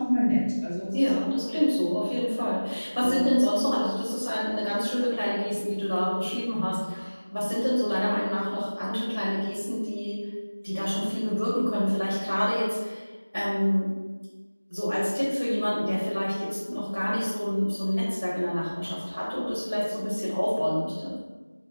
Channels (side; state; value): both; inverted; correlation -1.00